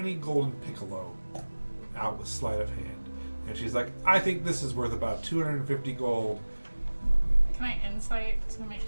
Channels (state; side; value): inverted; both; correlation -1.00